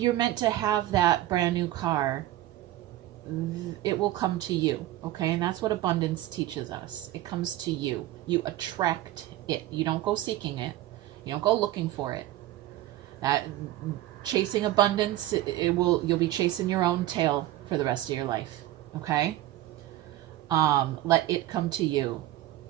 meant to have that brand new car, it will come to you, okay? And that's what abundance teaches us. It comes to you. You attract it. You don't go seeking it. You don't go looking for it. That chasing abundance, you'll be chasing your own tail for the rest of your life, okay? Let it come to you.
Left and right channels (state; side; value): quieter; left; 14.9 dB